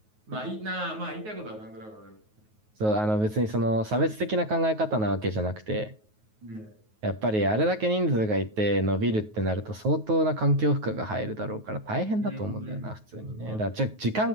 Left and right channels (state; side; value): late; left; 9.4 ms